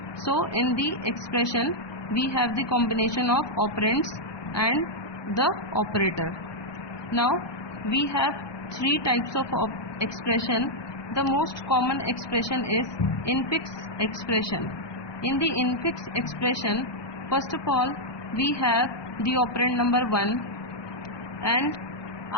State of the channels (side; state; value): right; late; 1.2 ms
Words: So in the expression we have the combination of operands and the operator. Now we have three types of expression. The most common expression is infix expression. In the infix expression, first of all we have the operand number 1, and